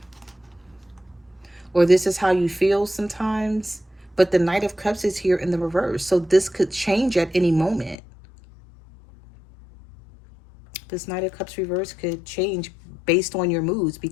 or this is how you feel sometimes. But the Knight of Cups is here in the reverse. So this could change at any moment. This Knight of Cups reverse could change based on your moods,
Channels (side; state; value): right; drops out; at 8.0 s